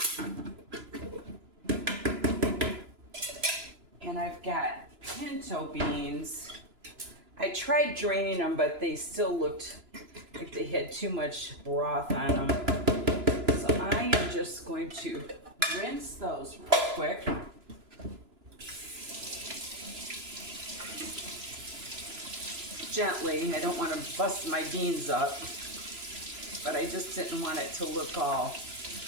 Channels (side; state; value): left; late; 2.9 ms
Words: and I've got pinto beans. I tried draining them, but they still looked like they had too much broth on them. So I am just going to rinse those real quick. Gently. I don't want to bust my beans up, but I just didn't want it to look all